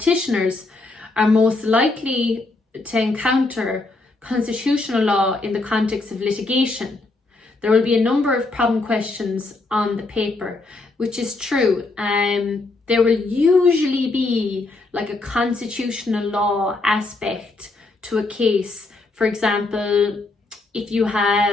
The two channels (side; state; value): right; quieter; 3.3 dB